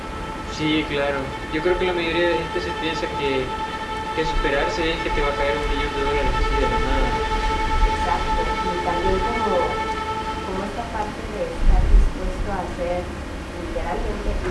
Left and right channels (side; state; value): both; identical; correlation 1.00